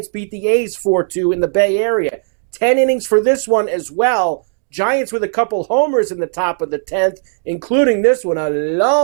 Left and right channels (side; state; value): left; silent; digital silence